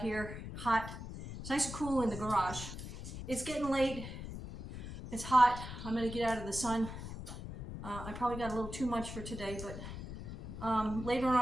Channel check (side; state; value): left; noise; rumble, 9 dB below the sound